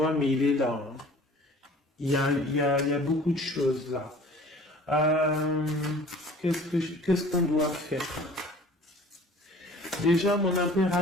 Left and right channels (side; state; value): both; normal; correlation 0.48